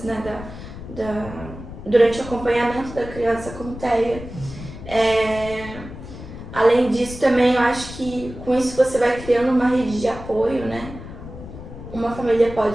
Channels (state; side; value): noise; left; rumble, 12 dB below the sound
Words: né, durante o acompanhamento da criança com TEA. Além disso, também eu acho que com isso você vai criando uma rede de apoio, né? Uma família